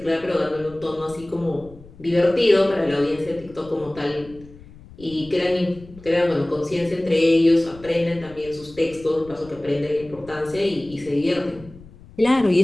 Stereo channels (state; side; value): noise; left; rumble, 21 dB below the sound